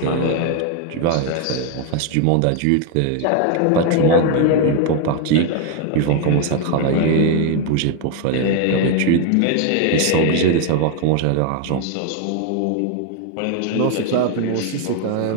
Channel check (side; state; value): both; different; correlation 0.00